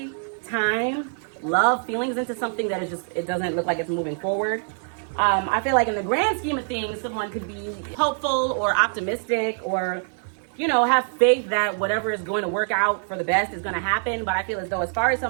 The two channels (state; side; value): silent; left; digital silence